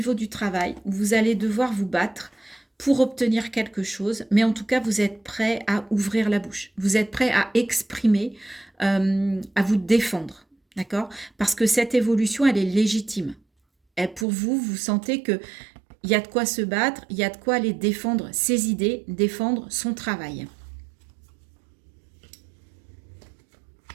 du travail où vous allez devoir vous battre pour obtenir quelque chose, mais en tout cas, vous êtes prêt à ouvrir la bouche. Vous êtes prêt à exprimer, à vous défendre, d'accord? Parce que cette évolution, elle est légitime. Et pour vous, vous sentez que il y a de quoi se battre, il y a de quoi aller défendre ses idées, défendre son travail.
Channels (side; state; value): left; drops out; at 14.2 s